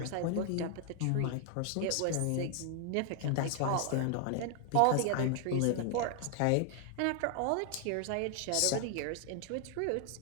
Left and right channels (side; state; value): both; different; correlation 0.00